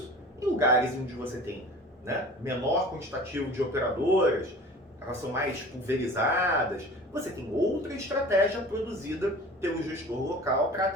Em lugares onde você tem, né, menor quantitativo de operadoras, elas são mais pulverizadas, você tem outra estratégia produzida pelo gestor local para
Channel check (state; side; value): normal; both; correlation 0.41